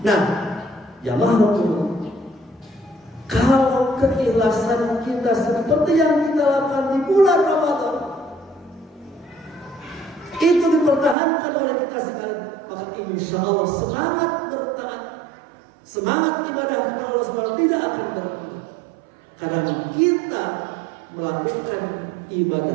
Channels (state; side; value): drops out; left; at 11.2 s